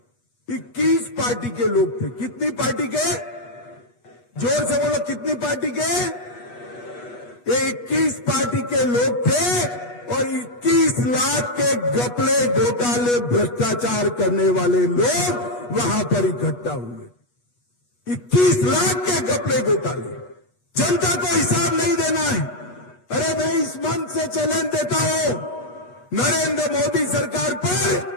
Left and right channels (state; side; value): late; right; 8.3 ms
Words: 21 पार्टी के लोग थे। कितनी पार्टी के? जोर से बोलो, कितनी पार्टी के? ये 21 पार्टी के लोग थे और 21 लाख के घपले, घोटाले, भ्रष्टाचार करने वाले लोग वहां पर इकट्ठा हुए। 21 लाख के घपले, घोटाले, जनता को हिसाब नहीं देना है। अरे मैं इस मंच से चैलेंज देता हूं, नरेंद्र मोदी सरकार पर